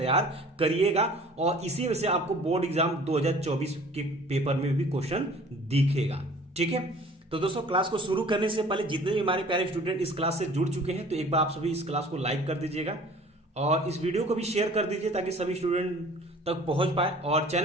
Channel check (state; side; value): normal; both; correlation 0.48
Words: करिएगा और इसी में से आपको बोर्ड एग्जाम 2024 के पेपर में भी क्वेश्चन दिखेगा। ठीक है, तो दोस्तों क्लास को शुरू करने से पहले जितने भी हमारे प्यारे स्टूडेंट इस क्लास से जुड़ चुके हैं तो एक बार आप सभी इस क्लास को लाइक कर दीजिएगा और इस वीडियो को भी शेयर कर दीजिए ताकि सभी स्टूडेंट तक पहुंच पाए। और